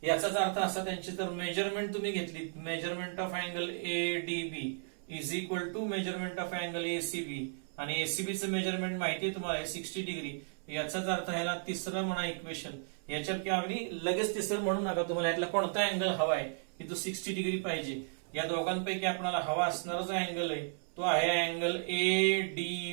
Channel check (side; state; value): left; silent; 55 dB below the other